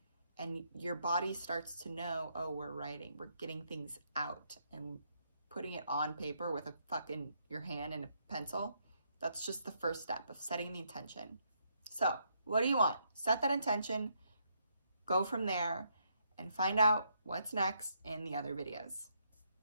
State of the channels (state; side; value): inverted; both; correlation -0.75